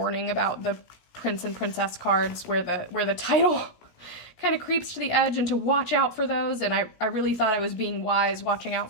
about the prince and princess cards where the title kind of creeps to the edge and to watch out for those. And I really thought I was being wise watching out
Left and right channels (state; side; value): late; right; 17 ms